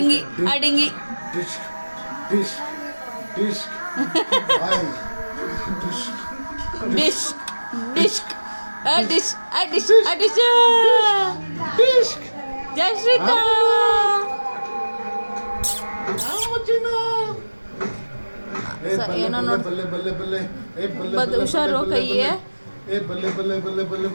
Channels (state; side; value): inverted; both; correlation -1.00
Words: ಆ dinghy Dish, dish, dish. Ay, dish. Dish dish ಆ dish ಆ dish ಆ ಡಿಶ್ Dish. ಜಯಶ್ರೀತಾ ಏನೋ ನೋಡ್ ಬಲ್ಲೆ ಬಲ್ಲೆ ಬಲ್ಲೆ ಏ ಬಲ್ಲೆ ಬದ್ ಹುಷಾರು ಕೈಯೇ ಏ ಬಲ್ಲೆ ಬಲ್ಲೆ ಬಲ್ಲೆ ಬಲ್ಲೆ